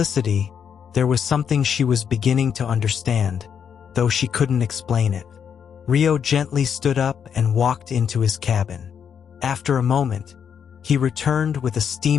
there was something she was beginning to understand, though she couldn't explain it. Rio gently stood up and walked into his cabin. After a moment, he returned with a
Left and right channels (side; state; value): right; quieter; 7.6 dB